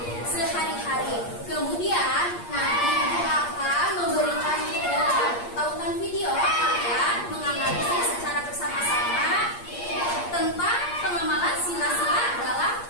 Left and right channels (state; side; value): late; right; 8.5 ms